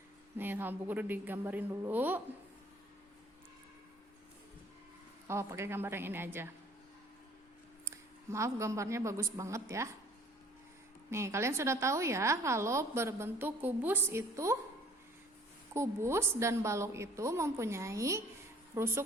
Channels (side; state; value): both; normal; correlation 0.55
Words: Nih, sama Bu Guru digambarin dulu. Oh, pakai gambar yang ini aja. Maaf, gambarnya bagus banget ya. Nih, kalian sudah tahu ya kalau berbentuk kubus itu, kubus dan balok itu mempunyai